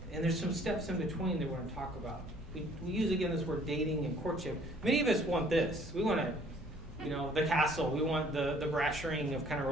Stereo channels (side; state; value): both; normal; correlation 0.58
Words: And there's some steps in between that we're going to talk about. We use, again, this word dating and courtship. Many of us want this. We want the castle. We want the brass ring of kind of